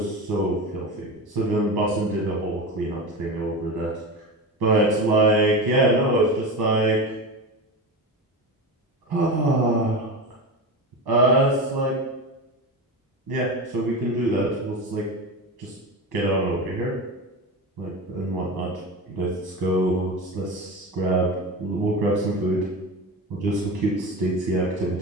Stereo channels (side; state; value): both; normal; correlation 0.24